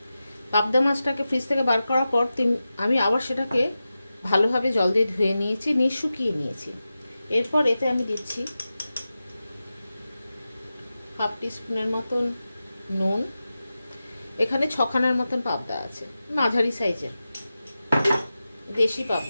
পাবদা মাছটাকে ফ্রিজ থেকে বার করার পর আমি আবার সেটাকে ভালোভাবে জল দিয়ে ধুয়ে নিয়েছি, নিয়ে শুকিয়ে নিয়েছি। এরপর এতে আমি দিচ্ছি হাফ টিস্পুনের মতন নুন। এখানে 6খানার মতন পাবদা আছে, মাঝারি সাইজের দেশি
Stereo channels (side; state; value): both; inverted; correlation -0.93